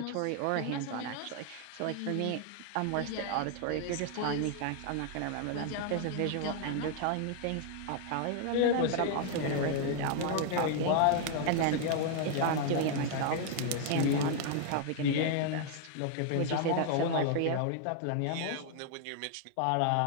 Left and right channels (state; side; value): different; both; correlation 0.00